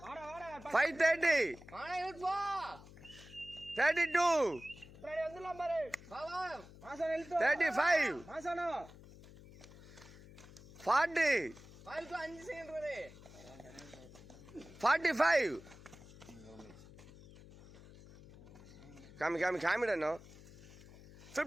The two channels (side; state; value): left; noise; hum, 19 dB below the sound